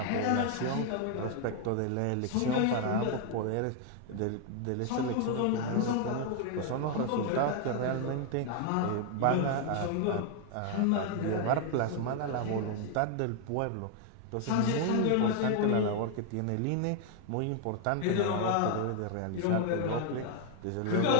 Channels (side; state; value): both; different; correlation 0.00